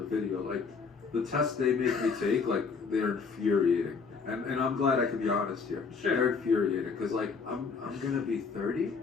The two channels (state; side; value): quieter; right; 5.2 dB